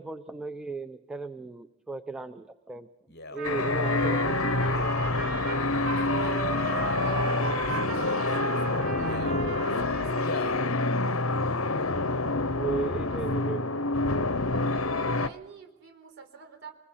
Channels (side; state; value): both; normal; correlation 0.08